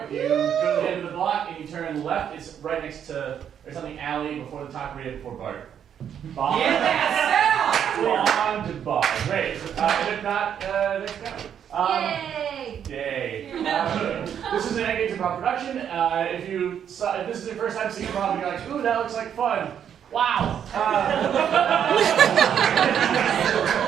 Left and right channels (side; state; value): left; quieter; 8.8 dB